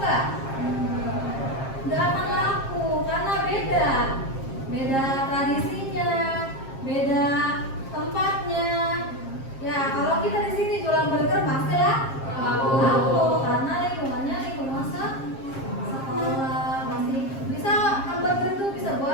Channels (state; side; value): late; right; 7.5 ms